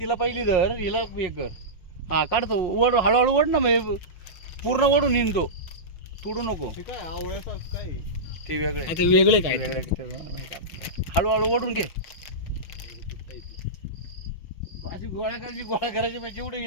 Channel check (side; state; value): right; late; 5.6 ms